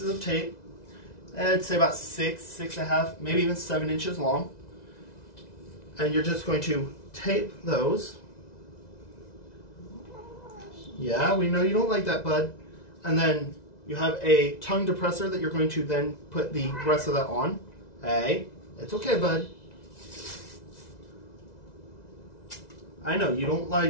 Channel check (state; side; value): late; right; 2.0 ms